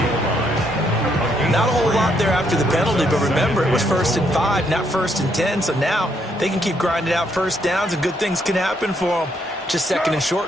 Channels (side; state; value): both; normal; correlation 0.73